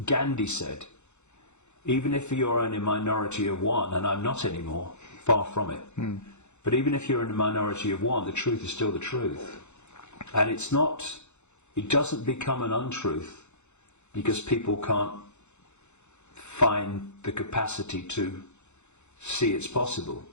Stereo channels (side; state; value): right; late; 0.83 ms